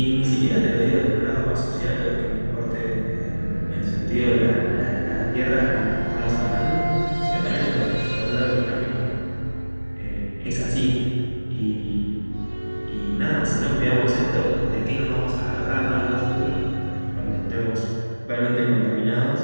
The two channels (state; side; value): inverted; both; correlation -1.00